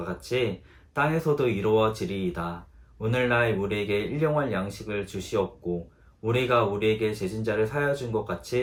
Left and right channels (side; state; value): both; identical; correlation 1.00